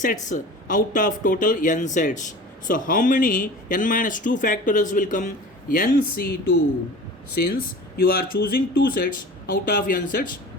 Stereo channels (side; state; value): both; normal; correlation 0.38